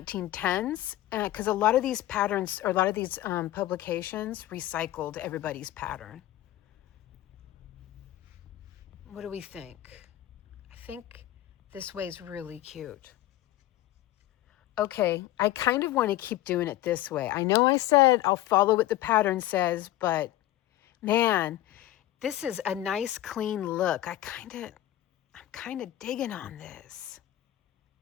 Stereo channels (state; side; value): quieter; right; 14.5 dB